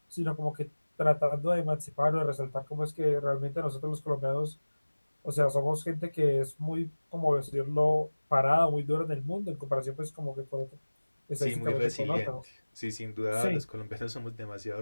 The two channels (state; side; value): inverted; both; correlation -1.00